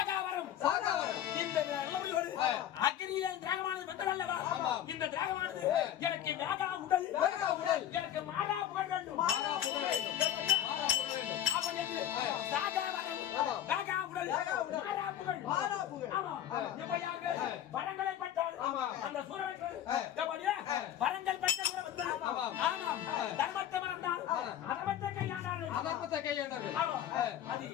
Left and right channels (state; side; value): quieter; right; 11.1 dB